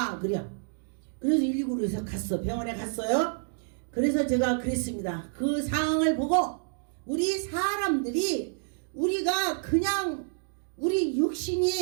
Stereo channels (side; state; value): left; silent; digital silence